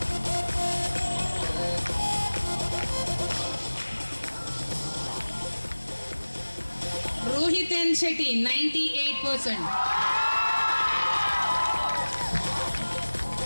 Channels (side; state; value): both; inverted; correlation -1.00